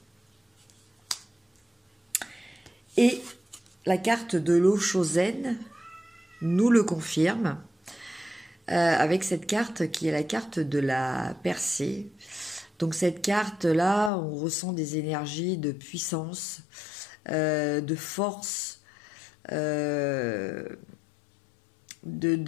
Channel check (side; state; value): right; drops out; at 14.1 s